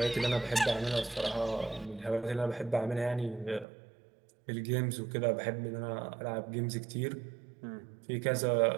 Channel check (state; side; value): drops out; left; at 3.7 s